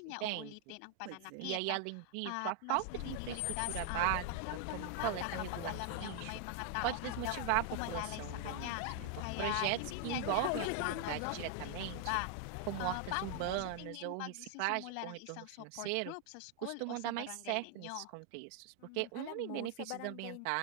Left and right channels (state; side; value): different; both; correlation 0.00